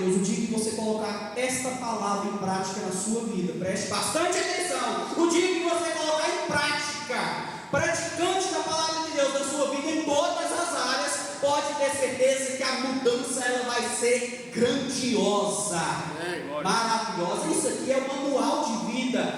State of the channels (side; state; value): both; identical; correlation 1.00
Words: O dia que você colocar esta palavra em prática na sua vida, preste bastante atenção. O dia que você colocar em prática, praticante da palavra de Deus na sua vida em todas as áreas, pode ter certeza que a mudança ela vai ser grandiosa, maravilhosa. Isso aqui é o manual de